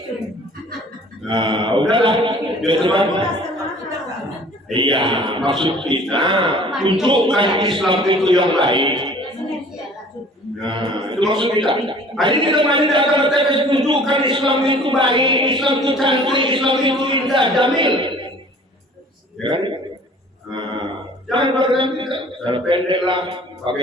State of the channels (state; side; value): normal; both; correlation 0.50